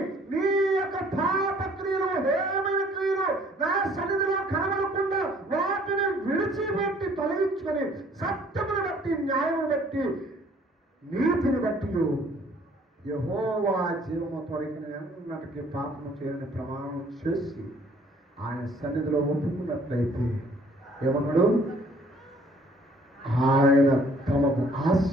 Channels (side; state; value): both; normal; correlation 0.59